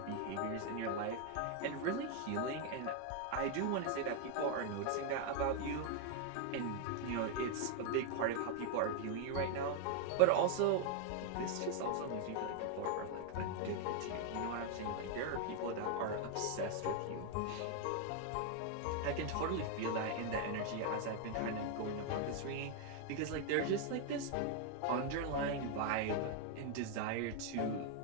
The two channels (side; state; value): both; different; correlation 0.00